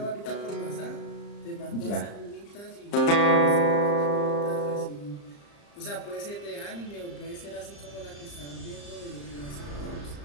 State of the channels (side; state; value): right; late; 35 ms